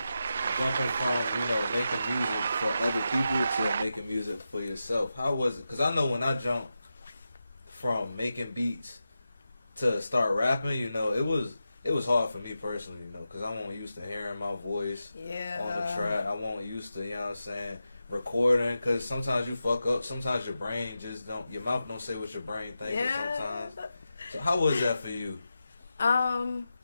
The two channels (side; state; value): both; inverted; correlation -0.90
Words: Jumping from, making music for other people to making music for yourself. How was it? Because I know when I jumped from making beats to start rapping, it was hard for me personally, because I wasn't used to hearing my voice on the track. I wasn't used to, recording, because sometimes you fuck up. Sometimes your brain just don't, your mouth don't say what your brain thinks sometimes. So how was that for you?